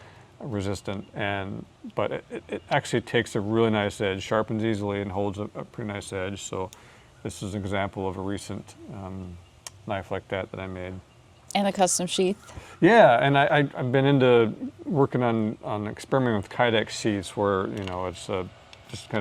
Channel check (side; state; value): both; identical; correlation 1.00